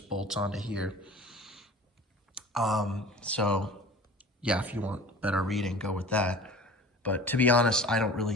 bolts onto here. So yeah, if you want better reading, go with that. But to be honest, I don't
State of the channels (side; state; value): both; normal; correlation 0.41